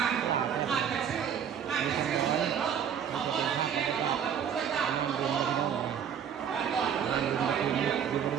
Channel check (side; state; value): left; quieter; 8.3 dB